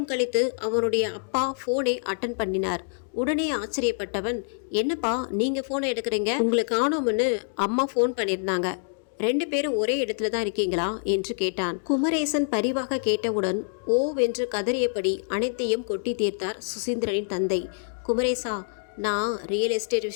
கழித்து அவனுடைய அப்பா ஃபோனை அட்டன் பண்ணினார். உடனே ஆச்சரியப்பட்டவன், என்னப்பா நீங்கள் ஃபோனை எடுக்கிறீங்க? உங்களுக்கு காணோம்னு அம்மா ஃபோன் பண்ணியிருந்தாங்க, 2 பேரும் ஒரே இடத்துல தான் இருக்கீங்களா என்று கேட்டான். குமரேசன் பரிவாக கேட்டவுடன் ஓவென்று கதறியபடி அனைத்தையும் கொட்டி தீர்த்தார் சுசீந்திரனின் தந்தை. குமரேசா, நான் ரியல் எஸ்டேட்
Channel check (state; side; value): silent; right; digital silence